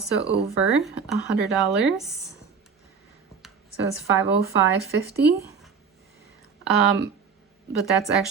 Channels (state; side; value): quieter; left; 5.9 dB